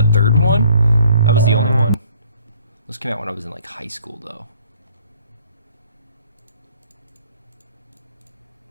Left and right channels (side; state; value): both; inverted; correlation -0.59